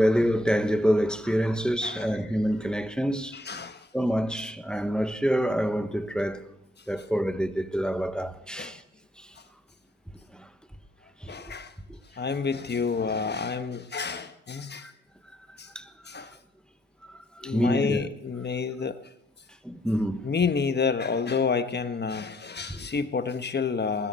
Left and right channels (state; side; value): normal; both; correlation 0.71